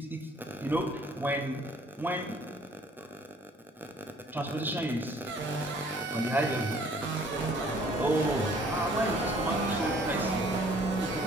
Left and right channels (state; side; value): normal; both; correlation 0.57